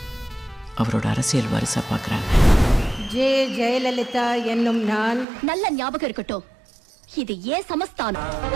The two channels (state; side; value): drops out; left; at 5.2 s